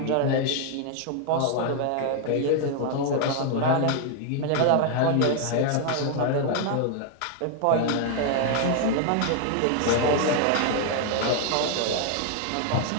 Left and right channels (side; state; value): both; different; correlation 0.00